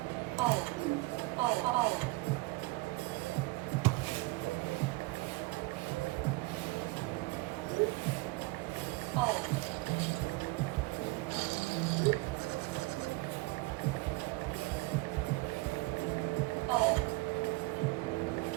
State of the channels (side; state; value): left; quieter; 23.1 dB